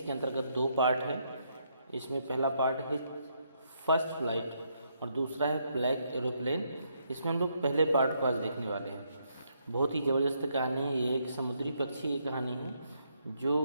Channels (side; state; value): both; inverted; correlation -0.75